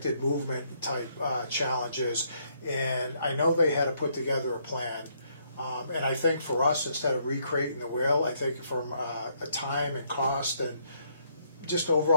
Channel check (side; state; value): both; inverted; correlation -0.71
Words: movement type challenges, and I know they had to put together a plan. And I think for us, instead of recreating the wheel, I think from a time and cost and just